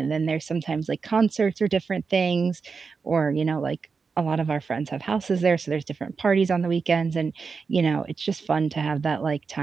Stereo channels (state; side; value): quieter; left; 5.1 dB